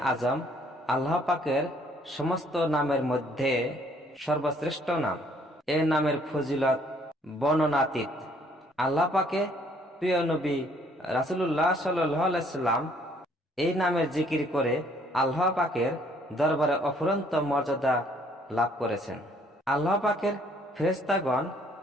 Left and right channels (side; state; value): both; normal; correlation 0.63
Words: আজম আল্লাহ পাকের সমস্ত নামের মধ্যে সর্বশ্রেষ্ঠ নাম। এ নামের ফজিলত বর্ণনাতীত। আল্লাহ পাকে প্রিয় নবী রাসূলুল্লাহ সাল্লাল্লাহু আলাইহি সাল্লাম এই নামের জিকির করে আল্লাহ পাকের দরবারে অফুরন্ত মর্যাদা লাভ করেছেন। আল্লাহ পাকের ফেরেশতাগণ